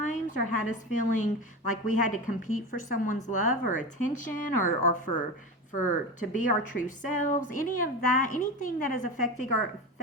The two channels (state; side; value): normal; both; correlation 0.24